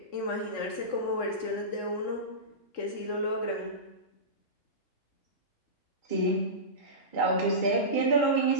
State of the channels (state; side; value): late; right; 3.6 ms